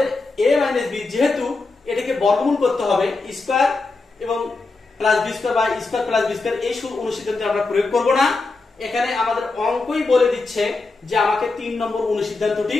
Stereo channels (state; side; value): quieter; right; 3.6 dB